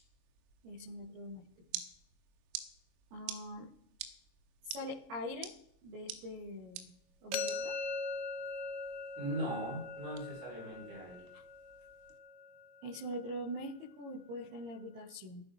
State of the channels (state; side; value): late; left; 22 ms